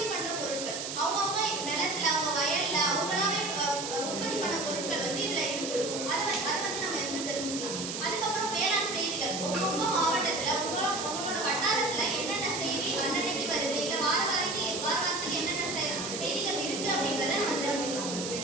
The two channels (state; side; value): noise; right; hiss, 5 dB below the sound